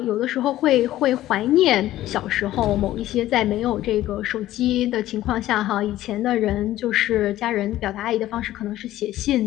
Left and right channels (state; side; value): quieter; right; 14.4 dB